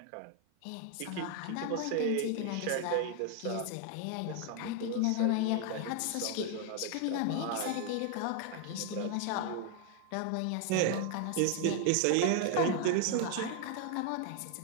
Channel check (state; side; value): different; both; correlation 0.00